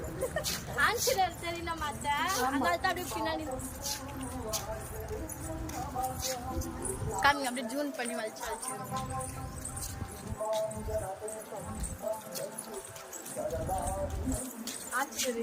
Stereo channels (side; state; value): both; identical; correlation 1.00